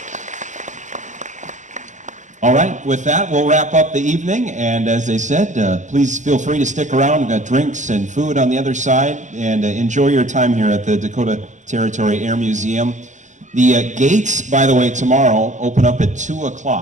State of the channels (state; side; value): late; left; 0.35 ms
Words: All right, with that, we'll wrap up the evening, and as they said, please feel free to stick around. We've got drinks and food on the other side, and enjoy your time here at the Dakota Territory Air Museum. The gates, by the way, tomorrow open up at 2